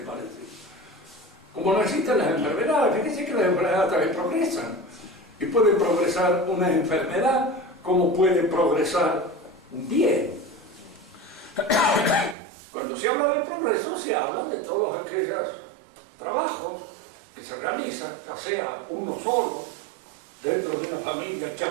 parece. Como no existen las enfermedades, fíjense que las enfermedades también progresan, y puede progresar una enfermedad como puede progresar un bien. Cuando se habla del progreso, se habla de todos aquellos trabajos que se realizan, ya sea uno solo, dentro de una familia que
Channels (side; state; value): left; drops out; at 12.4 s